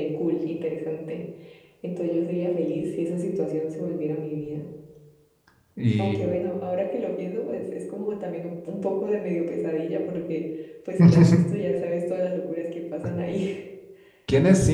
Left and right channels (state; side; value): identical; both; correlation 1.00